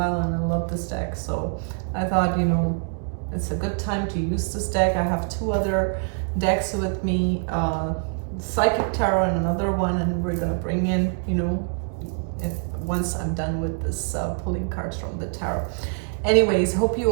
and I love this deck. So I thought, it's a good time to use this deck. I have two other decks with me, Psychic Tarot and another one, and we're going to bring in, once I'm done with this pulling cards from the tarot. Anyways, hope you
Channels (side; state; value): left; silent; 62 dB below the other